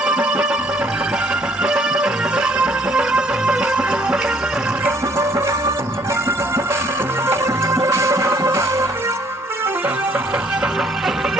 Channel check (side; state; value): both; normal; correlation 0.63